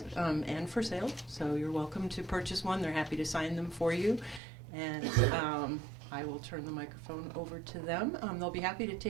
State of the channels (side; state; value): left; drops out; at 4.4 s